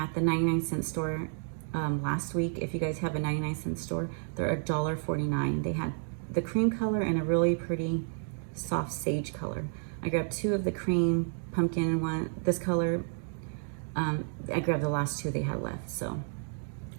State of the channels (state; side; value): silent; left; 57 dB below the other